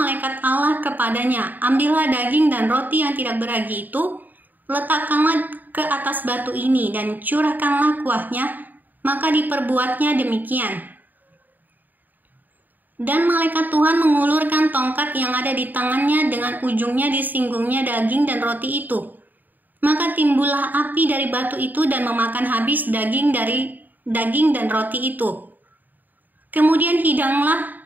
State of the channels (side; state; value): left; late; 0.087 ms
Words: Allah kepadanya, "Ambillah daging dan roti yang tidak beragi itu, letakkanlah ke atas batu ini dan curahkanlah kuahnya." Maka diperbuatnya demikian. Dan malaikat Tuhan mengulurkan tongkat yang ada di tangannya, dengan ujungnya disinggungnya daging dan roti itu. Maka timbullah api dari batu itu dan memakan habis daging dan roti itu. Kemudian